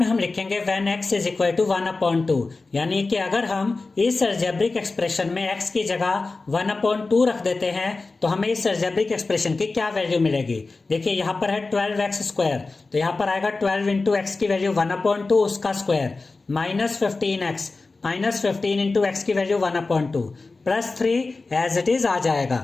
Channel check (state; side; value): quieter; right; 3.7 dB